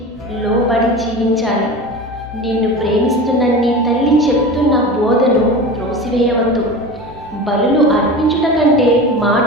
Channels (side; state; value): both; normal; correlation 0.31